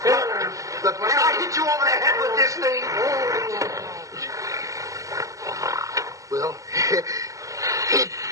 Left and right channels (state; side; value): late; left; 0.16 ms